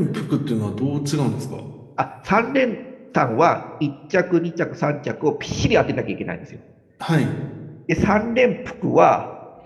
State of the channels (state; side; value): identical; both; correlation 1.00